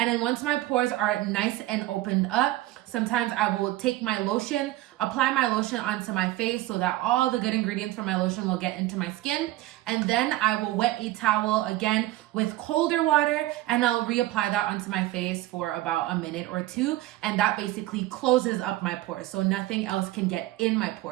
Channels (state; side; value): quieter; left; 16.5 dB